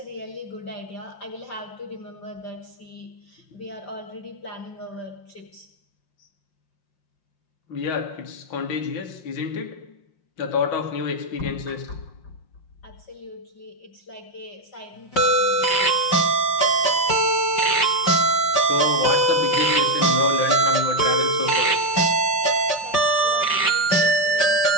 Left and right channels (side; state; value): right; late; 5.7 ms